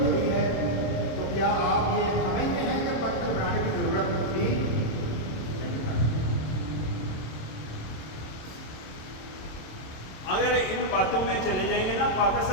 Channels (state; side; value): late; right; 26 ms